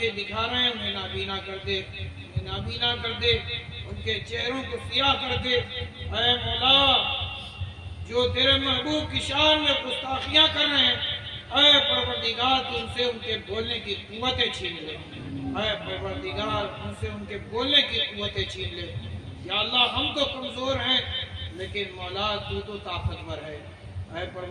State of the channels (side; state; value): both; identical; correlation 1.00